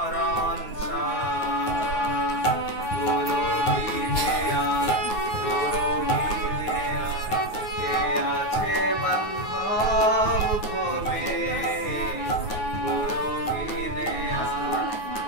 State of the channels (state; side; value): late; right; 9.4 ms